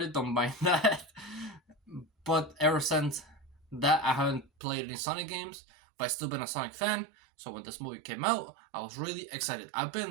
Don't mind that. But ever since that, I haven't played any Sonic games. But I've still been a Sonic fan. So when this movie came out, I was really excited. I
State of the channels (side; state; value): left; drops out; at 4.5 s